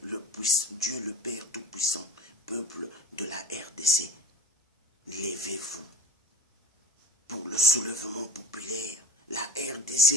Dieu le Père Tout-Puissant, peuple de la RDC, levez-vous pour le soulèvement populaire. La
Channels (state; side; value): normal; both; correlation 0.31